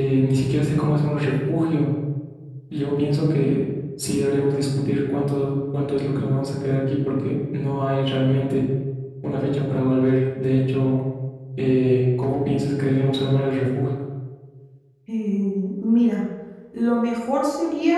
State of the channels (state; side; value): identical; both; correlation 1.00